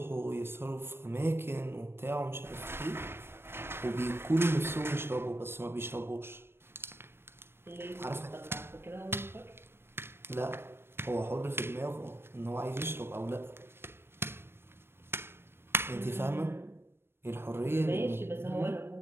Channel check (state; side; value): late; left; 0.12 ms